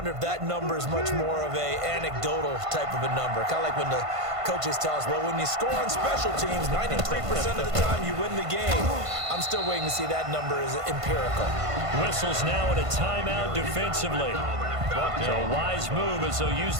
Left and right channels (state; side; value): late; left; 1.5 ms